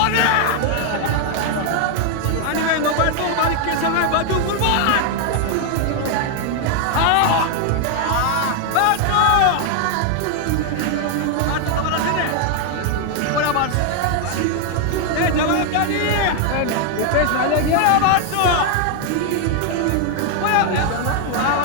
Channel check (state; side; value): different; both; correlation 0.00